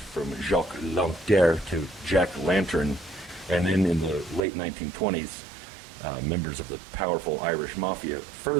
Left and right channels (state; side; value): drops out; left; at 4.5 s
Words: Jacques Lanterre to Jack Lantern. And then in the late 1920s, members of the powerful Irish mafia